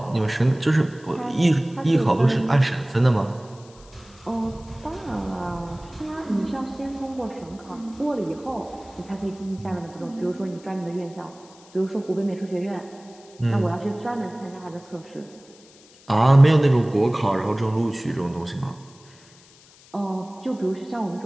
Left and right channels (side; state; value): left; noise; hiss, 25 dB below the sound